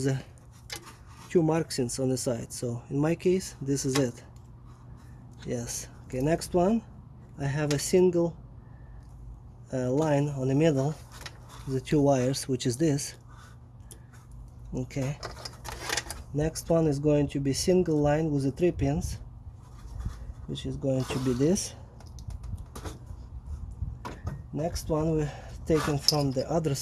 two markings on the side. So in my case, this is it. Yes. Okay, next one, I have a single line on the middle, the two wires, which is this. Okay. Next one is going to be single line with the 3 pins, which is going to be this. Next one we're taken from the other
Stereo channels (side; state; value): both; identical; correlation 1.00